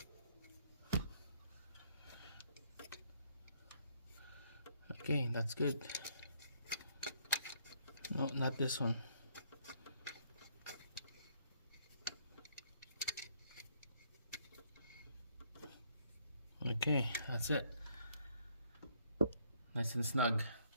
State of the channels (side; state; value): both; inverted; correlation -0.67